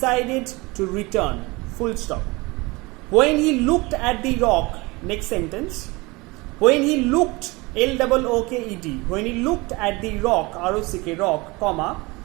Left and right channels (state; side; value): quieter; left; 24.2 dB